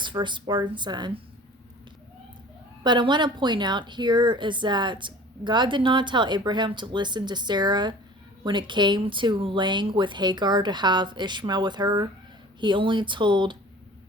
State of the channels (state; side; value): normal; both; correlation 0.44